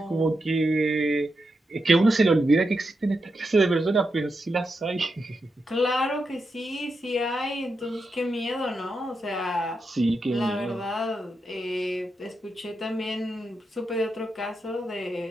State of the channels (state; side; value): normal; both; correlation 0.86